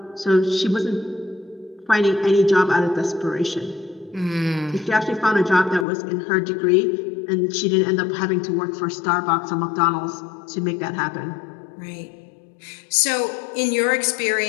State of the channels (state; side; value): drops out; right; at 5.9 s